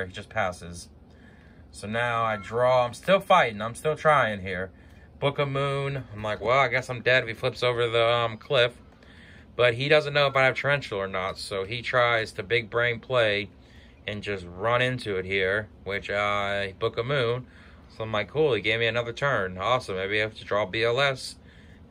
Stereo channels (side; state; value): both; identical; correlation 1.00